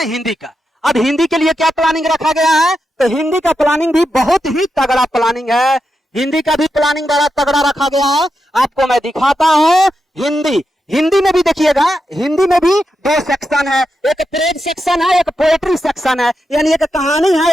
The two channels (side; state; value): both; normal; correlation 0.87